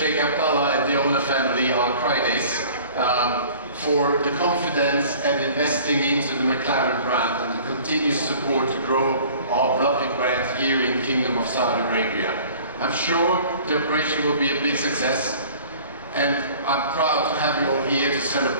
Abdallah and the owner family, our Fridays, for the confidence and investing into the McLaren brand and the continuous support to grow our beloved brand here in the Kingdom of Saudi Arabia. I'm sure the operation will be a big success, and I'm proud to have you all here to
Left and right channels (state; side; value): inverted; both; correlation -0.48